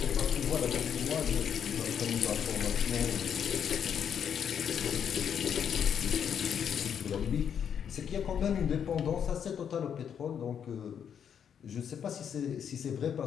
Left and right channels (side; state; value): right; quieter; 8.1 dB